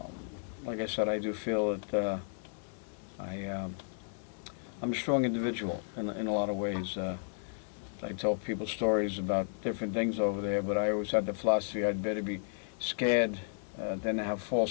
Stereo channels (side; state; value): right; silent; digital silence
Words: like I said, I do feel that I'm a strong individual in a lot of ways. I tell people stories about different things over there, but I always had the philosophy I'd better be scared than to have